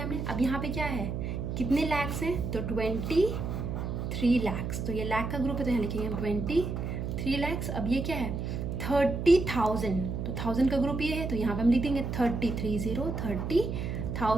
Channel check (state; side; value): noise; right; hum, 3 dB below the sound